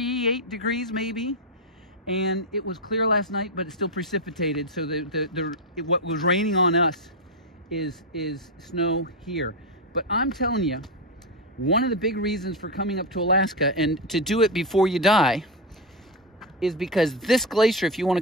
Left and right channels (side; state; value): both; normal; correlation 0.08